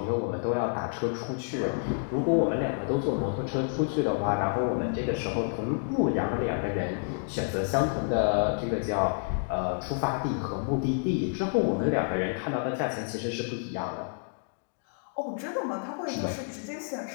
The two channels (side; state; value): right; silent; digital silence